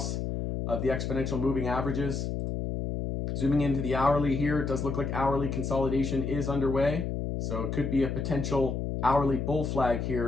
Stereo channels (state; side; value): noise; left; hum, 2 dB below the sound